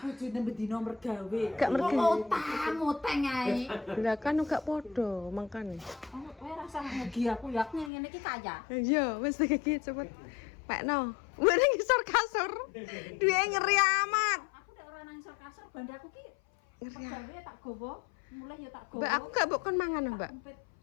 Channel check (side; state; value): right; drops out; at 7.9 s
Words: bendina mergawe. Gak mergawe. Utang ae. Lah kan gak podo mangkane. Kowe rasa mugi aku ya ngene iki kaya. Iya, wis iki cepet. Pekno. Wene ngisor kasur. Duwe ngeri amat. Aku nek ora nang isor kasur bandaku ki Ngeri. mergawe tak gowo, mulai ya tak gowo. Mbak aku gak mbok kon mangan, Mbak.